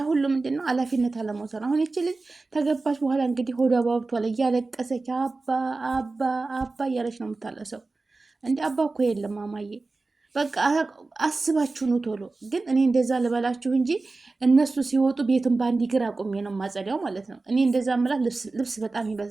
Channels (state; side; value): quieter; left; 3.5 dB